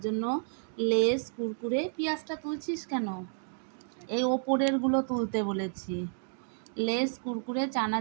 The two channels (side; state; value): left; silent; digital silence